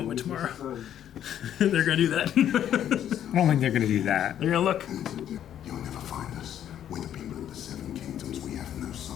tomorrow. They're gonna do that. I don't think they're gonna do that. They're gonna look. You'll never find us. We're the people of the Seven Kingdoms. We have no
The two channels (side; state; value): right; quieter; 10.4 dB